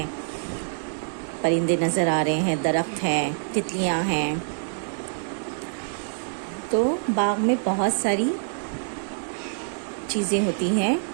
परिंदे नज़र आ रहे हैं, दरख्त हैं, तितलियाँ हैं। तो बाग में बहुत सारी चीज़ें होती हैं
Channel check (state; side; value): silent; left; digital silence